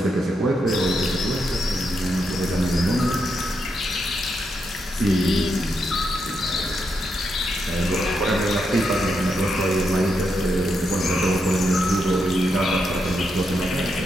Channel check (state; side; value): normal; both; correlation 0.82